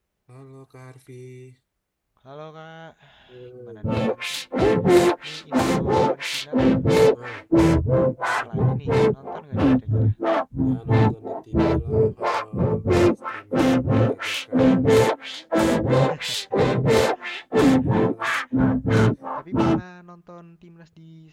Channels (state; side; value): identical; both; correlation 1.00